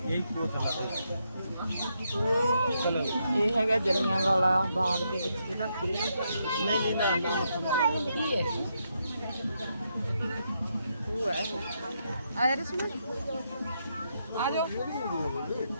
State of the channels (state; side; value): inverted; both; correlation -0.80